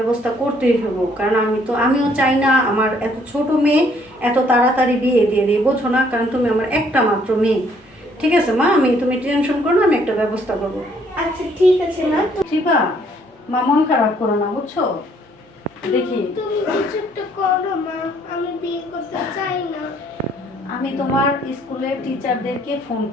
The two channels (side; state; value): both; normal; correlation 0.64